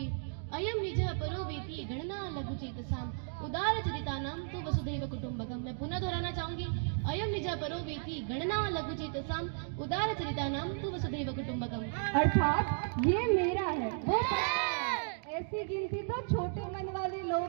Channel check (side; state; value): left; silent; digital silence